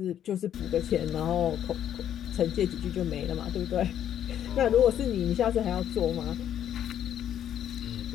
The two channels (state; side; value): quieter; right; 10.2 dB